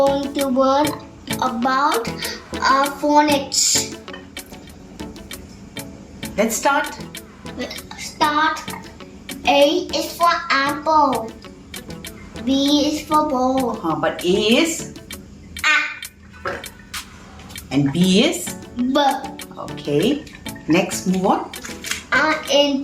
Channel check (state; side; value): identical; both; correlation 1.00